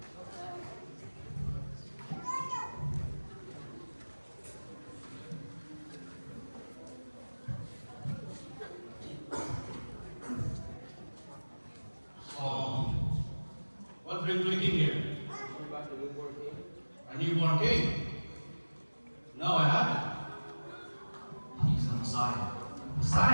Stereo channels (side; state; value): both; inverted; correlation -1.00